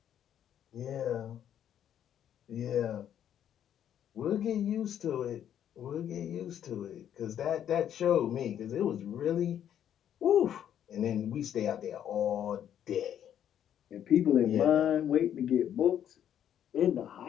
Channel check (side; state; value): right; quieter; 10.0 dB